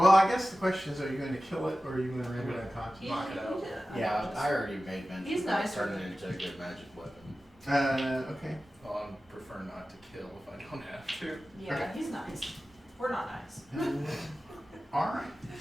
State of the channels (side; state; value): both; normal; correlation 0.95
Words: I guess the question is: are you going to kill it, or are you going to render it unconscious? Knock it out. Yeah, I already made mention. He's nice. Turning it into a good magic weapon. Okay. Well, I prefer not to kill if I don't have to. Yeah, Okay. he's nice. We're not nice. All right.